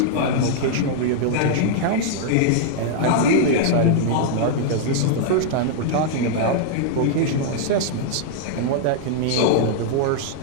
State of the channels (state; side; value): different; both; correlation -0.01